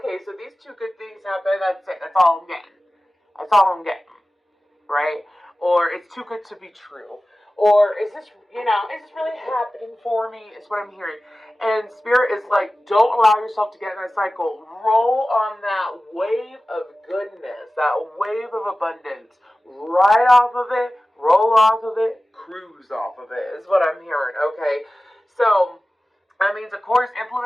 so these two good things happen, that's it, that's all I'm getting. That's all I'm getting, right? Or it's too good to be true. Or is this, is this really happening for me? Is what I'm hearing. And Spirit is like, don't allow yourself to get in that cycle. Roll on that wave of goodness, that wave of abundance. Ride off of it, roll off of it, cruise off of it, is what I'm hearing, okay? So, that means, of course,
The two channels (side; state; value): both; normal; correlation 0.96